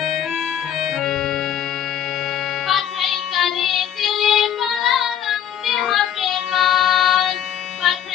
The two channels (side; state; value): right; quieter; 9.8 dB